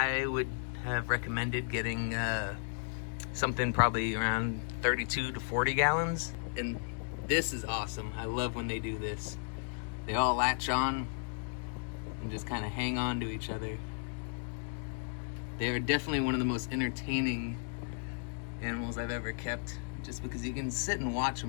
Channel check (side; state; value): right; silent; digital silence